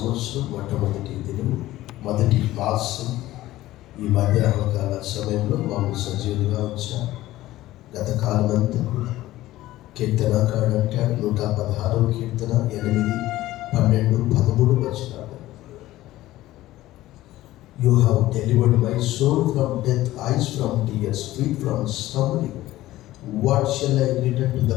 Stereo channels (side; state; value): right; quieter; 15.9 dB